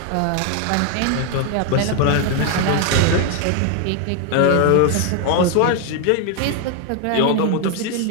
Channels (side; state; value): both; different; correlation 0.01